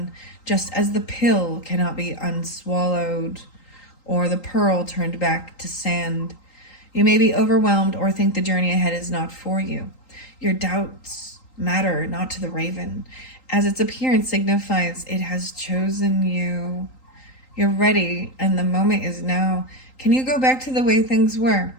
just as the pill cannot be unswallowed, or the pearl turned back to sand. You may be overwhelmed or think the journey ahead is not for you. Your doubts matter not to the raven, as its appearance signifies it has chosen you. You're ready, and the moment is now. Can you go back to the way things were?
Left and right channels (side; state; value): right; late; 3.8 ms